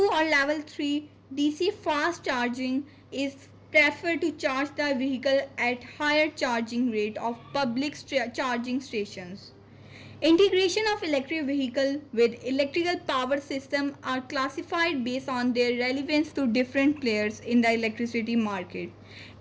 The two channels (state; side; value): identical; both; correlation 1.00